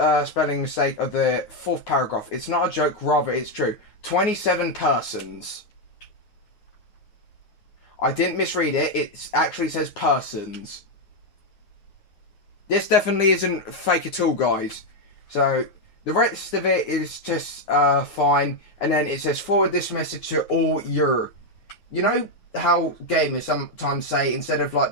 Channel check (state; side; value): late; right; 9.3 ms